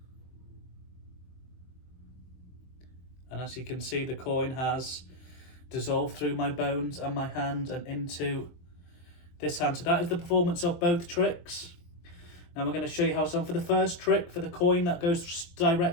And as you can see, the coin has dissolved through my bones and my hand and into this hand. So that is the performance of both tricks. Now we're going to show you how it's done for the first trick, for the coin that goes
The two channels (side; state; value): right; late; 23 ms